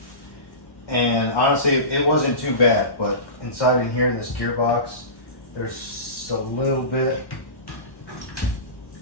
And honestly, it wasn't too bad, but inside in here in this gearbox, there's a little bit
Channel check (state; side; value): late; right; 1.1 ms